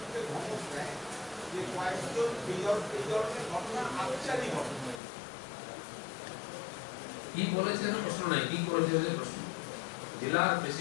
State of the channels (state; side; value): drops out; right; at 5.0 s